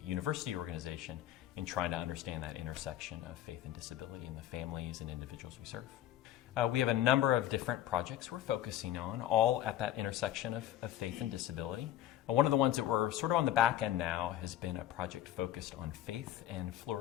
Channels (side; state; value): right; quieter; 12.5 dB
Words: university organization in trying to understand that intersection of faith and disability in the families and individuals we serve. We have a number of different projects we're focusing on, all at that intersection of faith and disability. One of the ones that we're sort of on the back end now has been a project focused on faith and